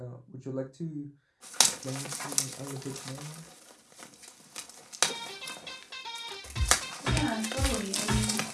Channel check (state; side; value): identical; both; correlation 1.00